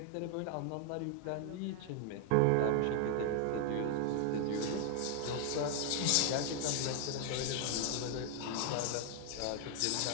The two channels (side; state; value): both; different; correlation 0.00